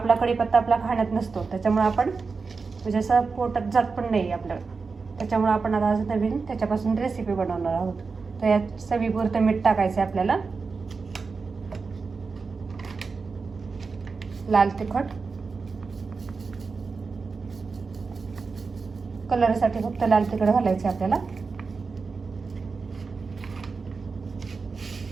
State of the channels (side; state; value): left; quieter; 4.6 dB